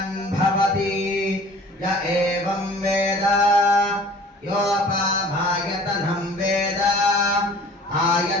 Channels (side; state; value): both; normal; correlation 0.47